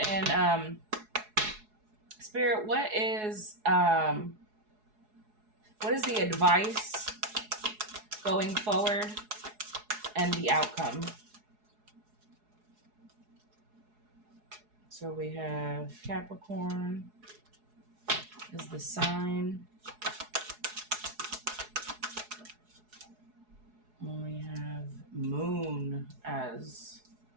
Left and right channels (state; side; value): late; left; 4.7 ms